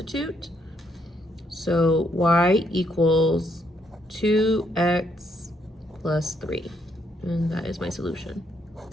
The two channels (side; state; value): both; normal; correlation 0.73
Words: So y equals 2x plus 3, and that is my solution.